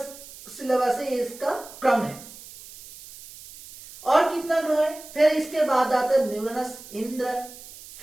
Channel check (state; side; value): noise; right; hiss, 17 dB below the sound